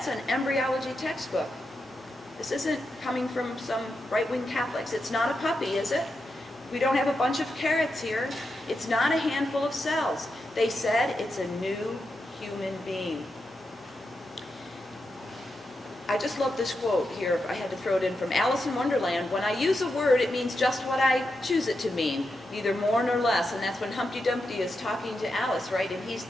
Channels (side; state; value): both; normal; correlation 0.87